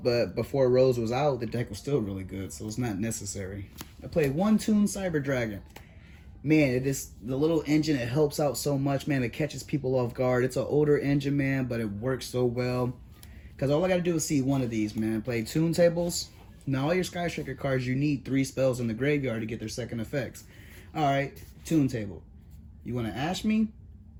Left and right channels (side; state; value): both; identical; correlation 1.00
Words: but before Rose was out, the deck was still really good, so it's not necessary. I played 1 Toon Cyber Dragon. Man, it is the little engine. It helps out so much, man. It catches people off guard. It's an older engine, man, but it works so well. Because all I got to do is see 1 of these, man. Play Toon Tables. Now, all your Sky Striker cards, you need 3 spells in the graveyard to get their second effects. All right, Toon Table. You want to Ash me?